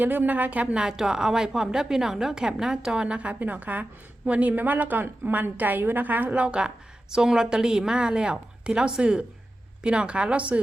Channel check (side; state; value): both; normal; correlation 0.93